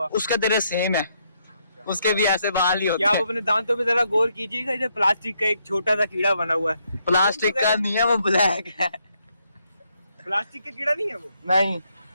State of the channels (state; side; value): inverted; both; correlation -0.75